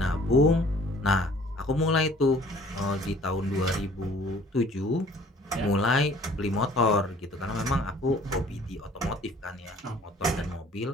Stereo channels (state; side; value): normal; both; correlation 0.53